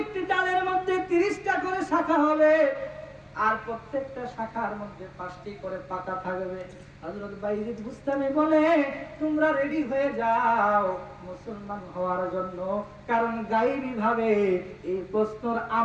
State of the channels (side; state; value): both; identical; correlation 1.00